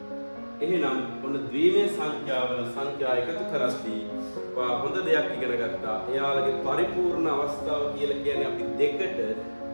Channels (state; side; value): inverted; both; correlation -1.00